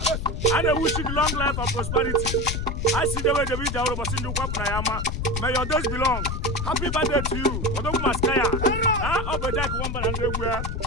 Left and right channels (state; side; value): noise; left; rumble, 3 dB below the sound